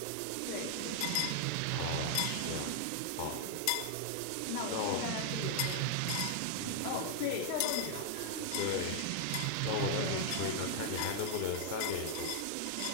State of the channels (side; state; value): both; different; correlation 0.00